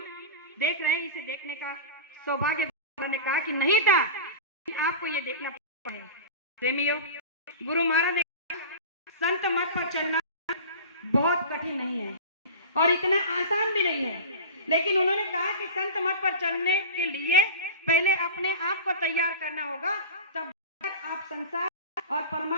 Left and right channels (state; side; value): inverted; both; correlation -0.32